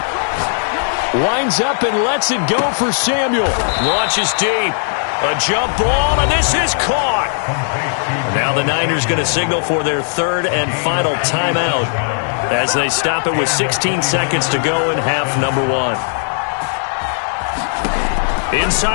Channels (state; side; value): silent; right; 68 dB below the other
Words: Lines up and lets it go for Samuel. Launches deep. A jump ball, and this is caught. Now the Niners going to signal for their 3rd and final timeout as they stop it with 16 seconds to go in half number 1.